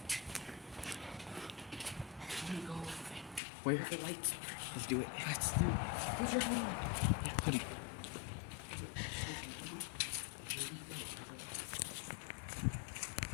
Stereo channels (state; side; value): drops out; right; at 3.4 s